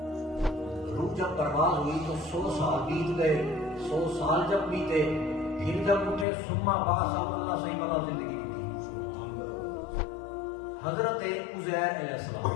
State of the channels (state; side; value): drops out; right; at 6.2 s